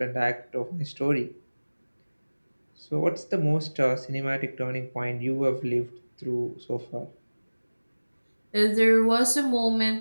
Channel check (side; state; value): both; inverted; correlation -1.00